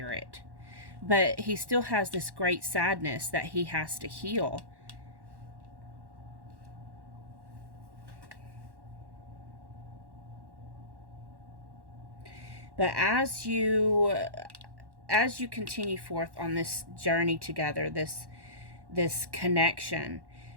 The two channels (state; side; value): late; left; 1.1 ms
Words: But he still has this great sadness that he has to heal. But as you continue forth on this journey together, this connection,